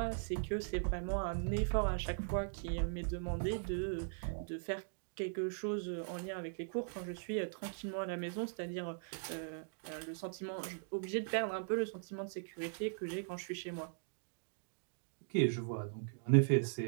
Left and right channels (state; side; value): silent; left; digital silence